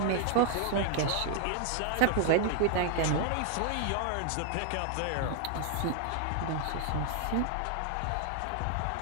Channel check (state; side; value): different; both; correlation 0.00